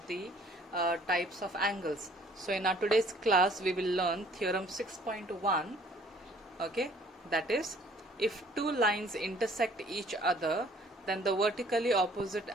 the types of angles. So in our today's class we will learn theorem 6.1, okay, that is, if two lines intersect each other then the vertically opposite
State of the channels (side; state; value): both; normal; correlation 0.57